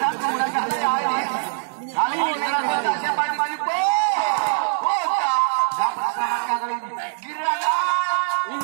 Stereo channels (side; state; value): left; silent; digital silence